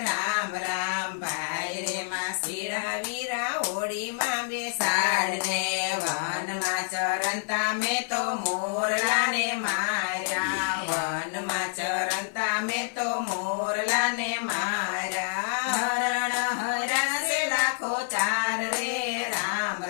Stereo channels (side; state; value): right; silent; 60 dB below the other